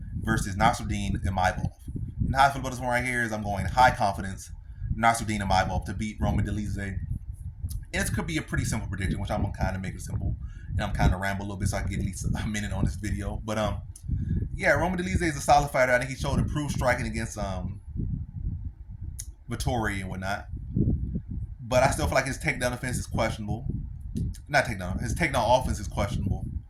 versus Nassourdine Imavov. And how I feel about this one right here is I'm going high confidence Nassourdine Imavov to beat Dolidze. And this could be a pretty simple prediction, which I'm gonna kind of make it simple. And I'm kind of ramble a little bit so I can get at least a minute on this video. But yeah, Dolidze is a solid fighter. I think he showed improved striking against Vittori and whatnot. But I still feel like his takedown defense is questionable. Not takedown. His takedown offense is questionable.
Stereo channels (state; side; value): identical; both; correlation 1.00